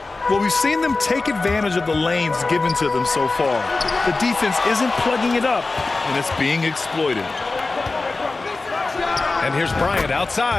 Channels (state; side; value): quieter; right; 3.6 dB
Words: Well, we've seen them take advantage of the lanes given to them so far. The defense isn't plugging it up, and it's being exploited. And here's Bryant